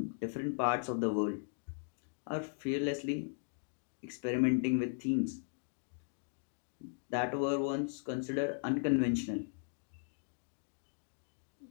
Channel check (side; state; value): right; silent; digital silence